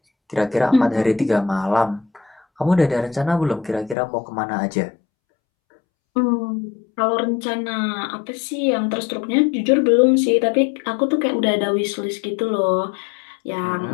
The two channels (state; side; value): drops out; right; at 4.0 s